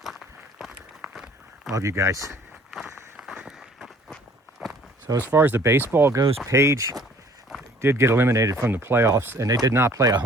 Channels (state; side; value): normal; both; correlation 0.56